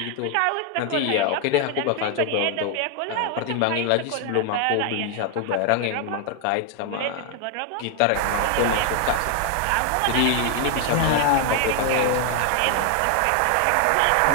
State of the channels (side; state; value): both; different; correlation 0.01